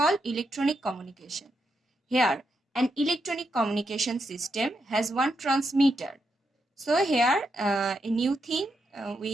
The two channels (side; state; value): both; normal; correlation 0.82